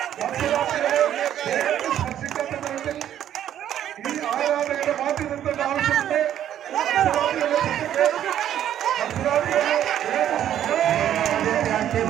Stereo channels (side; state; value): left; quieter; 10.8 dB